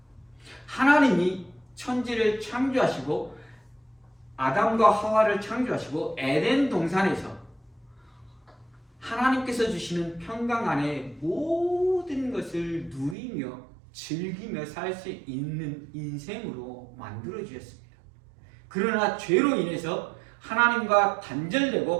하나님이 천지를 창조하시고 아담과 하와를 창조하시고 에덴 동산에서 하나님께서 주시는 평강 안에 모든 것을 누리며 즐기며 살 수 있는 인생으로 만들어 주셨습니다. 그러나 죄로 인해서 하나님과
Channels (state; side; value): drops out; left; at 13.2 s